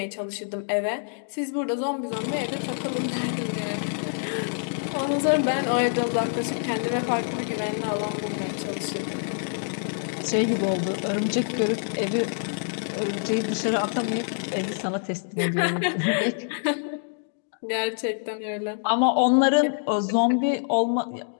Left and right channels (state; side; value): silent; right; digital silence